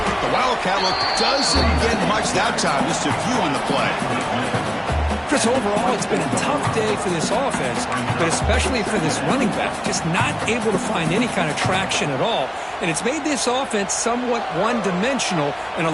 The Wildcat look doesn't get much that time. Just a few on the play. Chris, overall, it's been a tough day for this offense, but especially for this running back. Just not able to find any kind of traction at all. And it's made this offense somewhat one-dimensional, and a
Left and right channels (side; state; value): both; identical; correlation 1.00